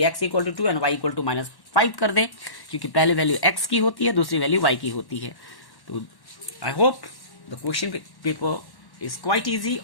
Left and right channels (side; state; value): right; late; 1.1 ms